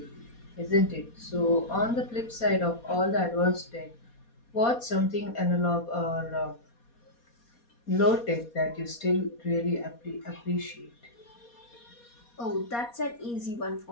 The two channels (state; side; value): late; right; 4.2 ms